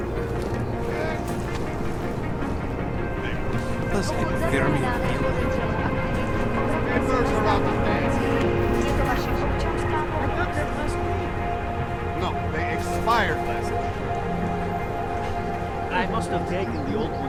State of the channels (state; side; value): identical; both; correlation 1.00